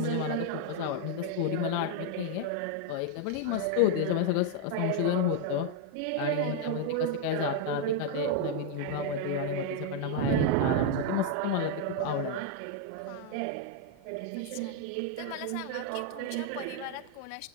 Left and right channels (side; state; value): both; different; correlation 0.00